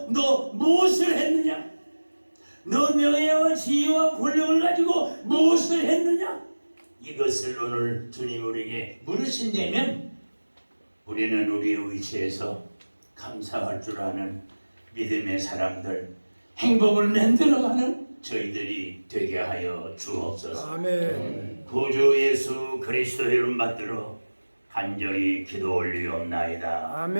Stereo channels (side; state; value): both; inverted; correlation -1.00